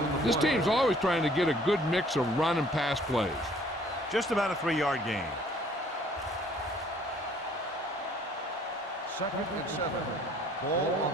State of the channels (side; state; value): both; normal; correlation 0.57